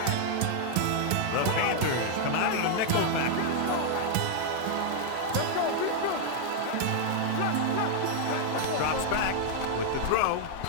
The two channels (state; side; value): different; both; correlation 0.00